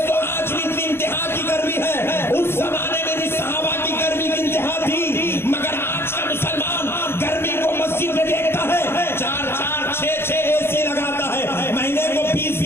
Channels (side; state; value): right; late; 0.11 ms